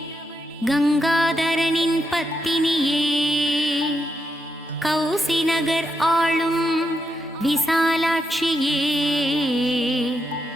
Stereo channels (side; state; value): both; normal; correlation 0.83